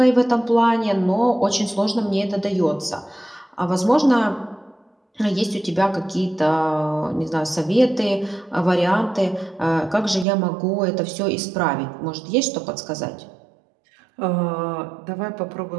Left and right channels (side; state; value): left; drops out; at 10.2 s